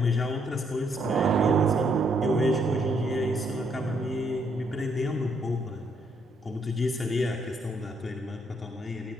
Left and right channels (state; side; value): normal; both; correlation 0.72